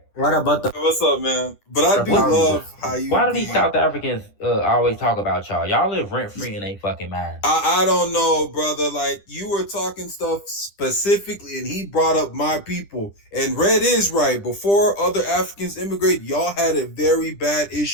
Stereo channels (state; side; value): late; right; 10 ms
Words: What about the? What's up, man? But I do love how you Why do be. these South Africans always talk about y'all? Y'all live rent free in they fucking mind. I don't know, brother. Like you were talking stuff specifically, and he brought up my people. And Red is right. Before other Africans immigrate, y'all had a very bad